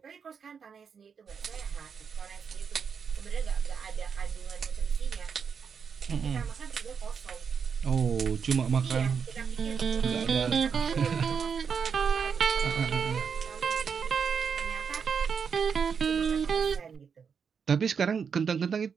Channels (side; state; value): left; quieter; 6.5 dB